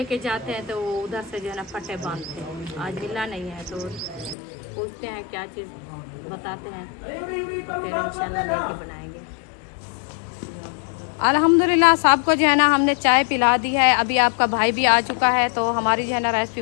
जाते हैं। तो वो उधर से जो है ना फटे बांधते हैं। आज मिला नहीं है तो पूछते हैं क्या चीज़, बताते हैं तो फिर इंशाल्लाह लेके बनाएंगे। अल्हम्दुलिल्लाह सबको जो है ना हमने चाय पिला दी है। अभी आपका भाई भी आ चुका है तो हमारी जो है ना रेसिपी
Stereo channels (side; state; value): right; drops out; at 4.4 s